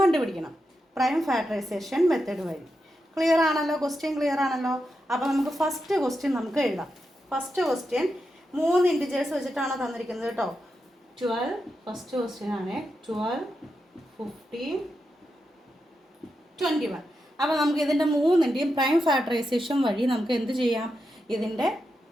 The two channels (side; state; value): both; normal; correlation 0.87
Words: കണ്ടുപിടിക്കണം പ്രൈം ഫാക്ടറൈസേഷൻ മെത്തേഡ് വഴി. ക്ലിയർ ആണല്ലോ? ക്വസ്റ്റ്യൻ ക്ലിയർ ആണല്ലോ? അപ്പോൾ നമുക്ക് ഫസ്റ്റ് ക്വസ്റ്റ്യൻ നമുക്ക് എഴുതാം. ഫസ്റ്റ് ക്വസ്റ്റ്യൻ 3 ഇൻറ്റിജേഴ്സ് വെച്ചിട്ടാണ് തന്നിരിക്കുന്നത് കേട്ടോ. 12 ഫസ്റ്റ് ക്വസ്റ്റ്യൻ ആണ്. 12, 15, 21. അപ്പോൾ നമുക്ക് ഇതിൻ്റെ 3-ൻ്റെയും പ്രൈം ഫാക്ടറൈസേഷൻ വഴി നമുക്ക് എന്ത് ചെയ്യാം? ഇതിൻ്റെ